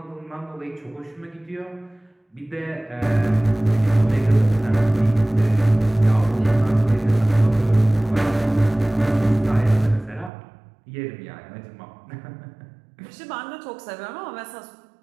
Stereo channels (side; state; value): left; drops out; at 10.3 s